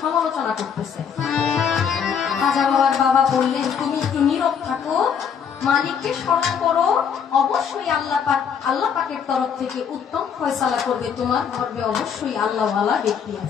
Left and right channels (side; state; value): right; quieter; 7.3 dB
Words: সমালোচনা করতেছে। খাজা বাবার বাবা বললেন তুমি একটু নীরব থাকো, মালিককে স্মরণ করো, অবশ্যই আল্লাহ পাকের তরফ থেকে উত্তম ফয়সালা করবে, তোমার গর্ভে অবশ্যই আল্লাহওয়ালা ব্যক্তি